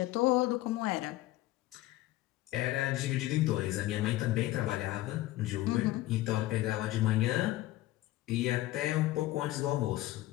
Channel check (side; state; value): right; quieter; 16.6 dB